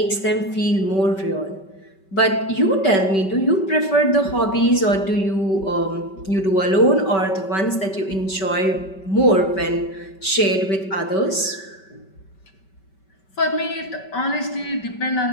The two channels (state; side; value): late; right; 5.2 ms